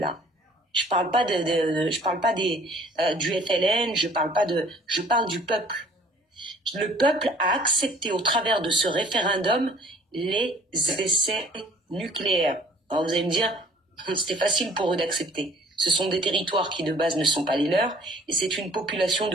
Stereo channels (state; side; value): normal; both; correlation 0.53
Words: Je parle pas du FLN, je parle du peuple. Le peuple a accepté au travers de ce référendum les essais nucléaires. Alors vous allez me dire, c'était facile pour eux d'accepter. Ce sont des territoires qui de base ne sont pas les leurs, et c'est une population